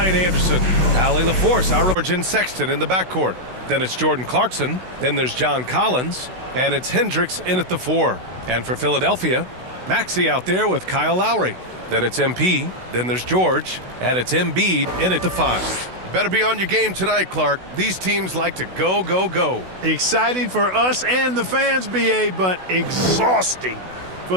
Anderson. Allie LaForce, our Origin Sexton in the backcourt. Then it's Jordan Clarkson. Then there's John Collins. And it's Hendricks in at the 4. And for Philadelphia, Maxey out there with Kyle Lowry. Then it's MP. Then there's George. And it's Embiid in at the 5. Better be on your game tonight, Clark. These teams like to go, go, go. Exciting for us and the fans, BA, but exhausting for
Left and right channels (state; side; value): late; left; 16 ms